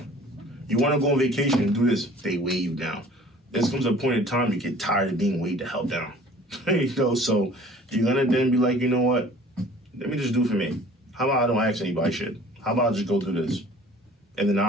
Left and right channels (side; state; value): both; normal; correlation 0.49